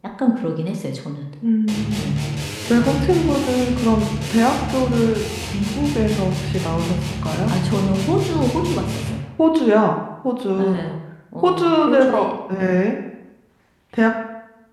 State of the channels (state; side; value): identical; both; correlation 1.00